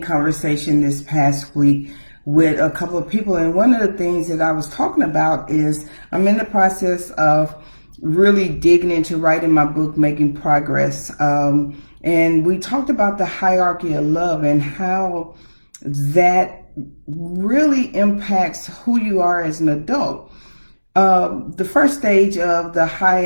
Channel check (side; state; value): both; inverted; correlation -1.00